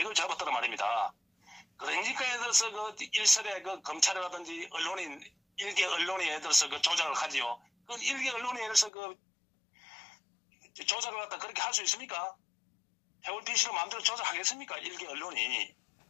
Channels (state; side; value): drops out; right; at 8.9 s